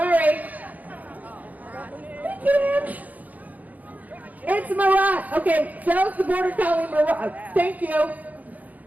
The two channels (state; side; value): late; left; 0.079 ms